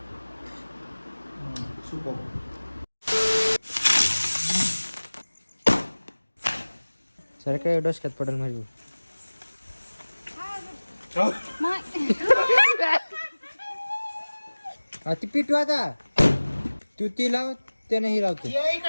सुपर. सर काय डोसक्यात पडेल माझी. ती पिटू आता तू ती लाव त्याने ही लावते.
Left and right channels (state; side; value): inverted; both; correlation -1.00